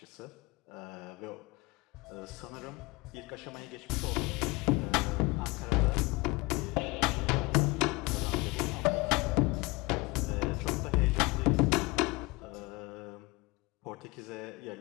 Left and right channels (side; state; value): right; quieter; 24.0 dB